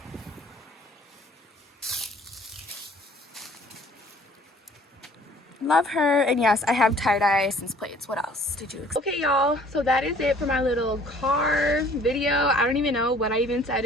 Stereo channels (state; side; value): normal; both; correlation 0.54